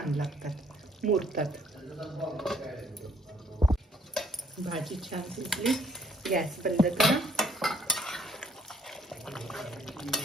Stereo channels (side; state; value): both; normal; correlation 0.65